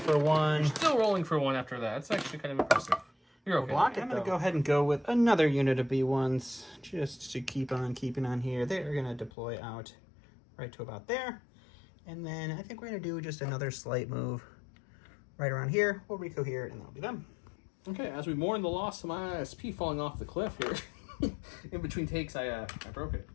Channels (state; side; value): drops out; right; at 9.3 s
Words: 1. You're still rolling for 1 after that. It's actually kind of impressive. You're okay. I'm going to go ahead and go with another unit of B1s just to keep on keeping on here. They're going to deploy out right to about there. And then I think we're going to do just another slight move right around here. We'll Rico here, and that'll be them. Okay, as we mourn the loss of my ISP falling off the cliff here, in between takes, I broke it.